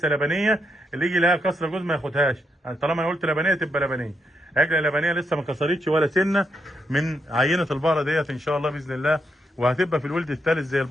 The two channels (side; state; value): both; normal; correlation 0.80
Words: لبنيه. اللي يجي لها كسره جوز ما ياخدهاش، يعني طالما انا قلت لبنيه تبقى لبنيه. عجله لبنيه لسه ما كسرتش ولا سنه من عينه البقره ديت ان شاء الله باذن الله، وهتبقى في الولد الثالث زي